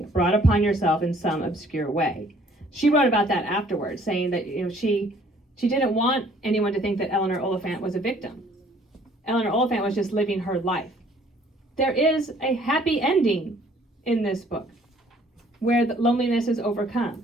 brought upon yourself in some obscure way. She wrote about that afterwards, saying that she didn't want anyone to think that Eleanor Oliphant was a victim. Eleanor Oliphant was just living her life. There is a happy ending in this book where the loneliness is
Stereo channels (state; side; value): normal; both; correlation 0.58